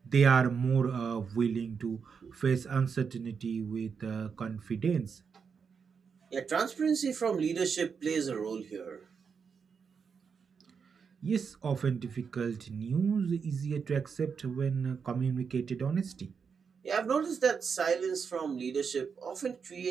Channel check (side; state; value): left; quieter; 6.1 dB